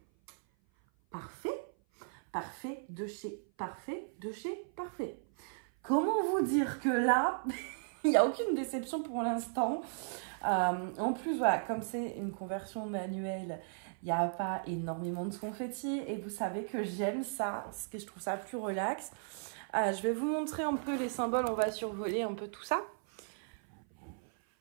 parfaits, parfait de chez parfait, de chez parfait. Comment vous dire que là, il n'y a aucune déception pour l'instant. En plus, voilà, comme c'est une conversion manuelle, il n'y a pas énormément de confetti. Et vous savez que j'aime ça, parce que je trouve ça plus relax. Je vais vous montrer un peu les symboles, on va survoler un peu tout ça.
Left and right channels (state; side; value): silent; left; 54 dB below the other